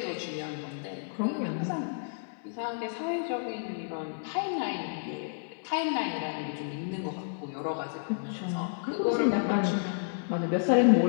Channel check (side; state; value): right; silent; 57 dB below the other